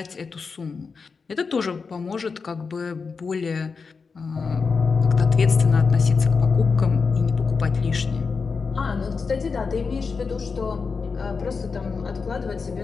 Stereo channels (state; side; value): quieter; right; 5.0 dB